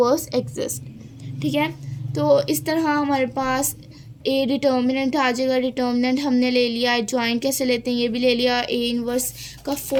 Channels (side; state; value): both; identical; correlation 1.00